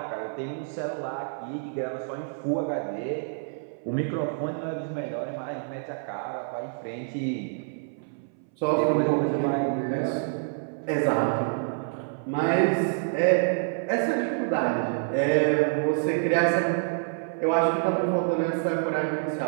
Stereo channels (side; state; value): left; silent; 60 dB below the other